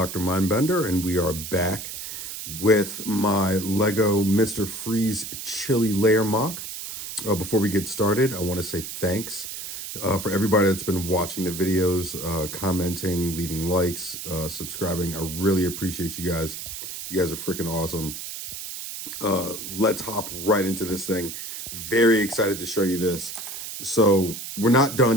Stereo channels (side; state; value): right; noise; hiss, 8 dB below the sound